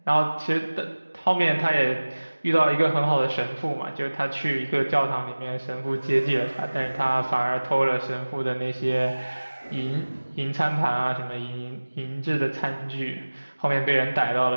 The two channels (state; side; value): inverted; both; correlation -1.00